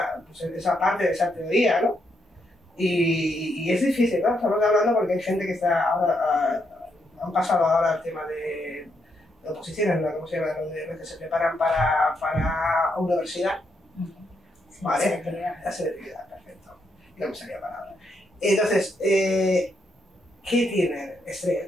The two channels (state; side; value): normal; both; correlation 0.78